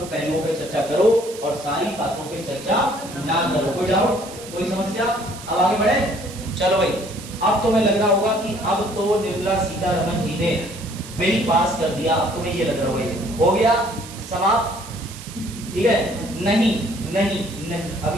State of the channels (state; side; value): noise; right; hiss, 15 dB below the sound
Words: पहलुओं पे चर्चा करो और सारी बातों पे चर्चा ना करो। कोई डाउट, कोई समस्या? अब आगे बढ़े, चलो भाई। अब तुम्हें लग रहा होगा कि अब तो निर्मला सीतारमण जी ने बिल पास कर दिया, अब तुम्हें ये लग रहा होगा हो गया समाप्त, ठीक है? नहीं नहीं नहीं,